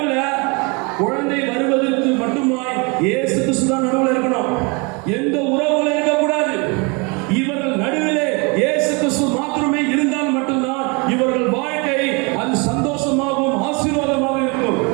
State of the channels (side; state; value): left; quieter; 30.3 dB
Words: குழந்தை வருவதற்கு மட்டுமாய் இயேசு கிறிஸ்து தான் நடுவுல இருக்கணும். எந்த உறவுகளும் இருக்கக்கூடாது. இவர்கள் நடுவிலே இயேசு கிறிஸ்து மாத்திரமே இருந்தால் மட்டும்தான் இவர்கள் வாழ்க்கை அது சந்தோஷமாகவும் ஆசீர்வாதமாக இருக்கும்.